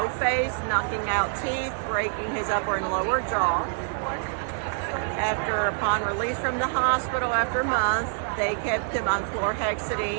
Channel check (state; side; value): silent; left; 61 dB below the other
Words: face, knocking out teeth, breaking his upper and lower jaw. Upon release from the hospital after a month, they kept him on